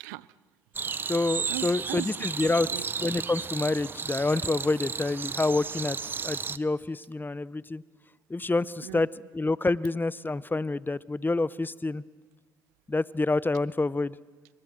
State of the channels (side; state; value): both; normal; correlation 0.77